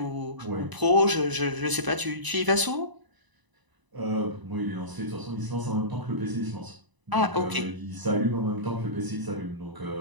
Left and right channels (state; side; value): late; left; 1.0 ms